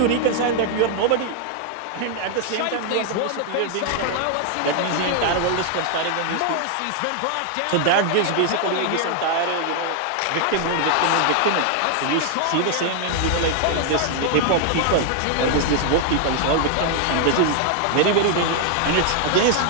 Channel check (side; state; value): both; different; correlation 0.00